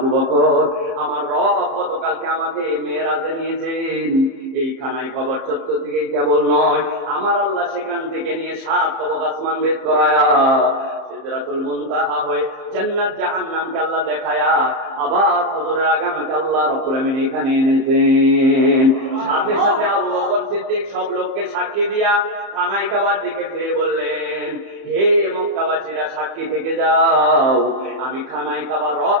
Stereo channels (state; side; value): late; left; 30 ms